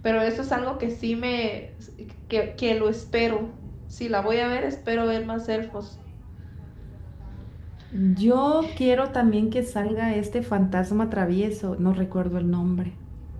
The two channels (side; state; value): both; identical; correlation 1.00